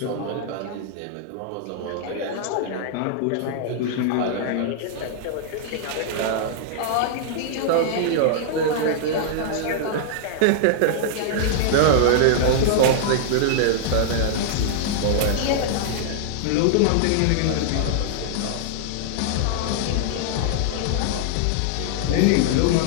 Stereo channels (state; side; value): different; both; correlation -0.01